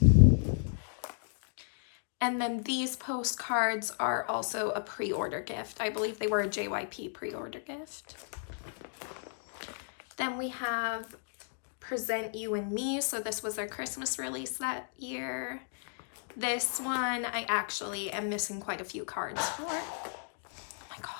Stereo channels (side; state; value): right; silent; digital silence